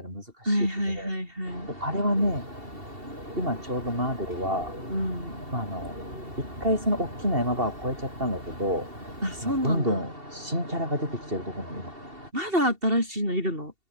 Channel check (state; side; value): late; left; 2.7 ms